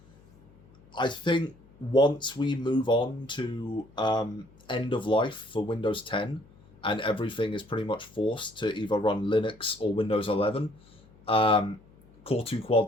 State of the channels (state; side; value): noise; left; hum, 26 dB below the sound